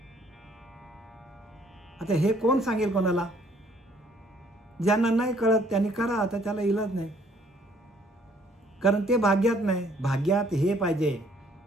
आता हे कोण सांगेल कोणाला? ज्यांना नाही कळत त्यांनी करा, आता त्याला इलाज नाही. कारण ते भाग्यात नाही. भाग्यात हे पाहिजे,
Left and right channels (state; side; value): normal; both; correlation 0.62